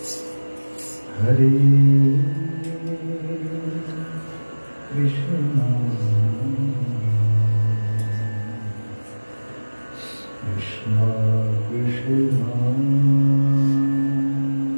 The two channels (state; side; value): inverted; both; correlation -1.00